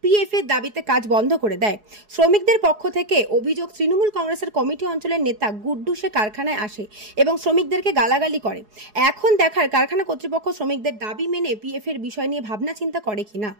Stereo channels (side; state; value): left; late; 4.8 ms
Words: পিএফ এর দাবিতে কাজ বন্ধ করে দেয়। শ্রমিকদের পক্ষ থেকে অভিযোগ, তৃণমূল কংগ্রেসের কমিটি অঞ্চলের নেতা গুড্ডু সে কারখানায় আসে এবং শ্রমিকদেরকে গালাগালি করে। এখন দেখার কারখানা কর্তৃপক্ষ শ্রমিকদের দাবি মেনে পিএফ এর বিষয় নিয়ে ভাবনা চিন্তা করে কিনা।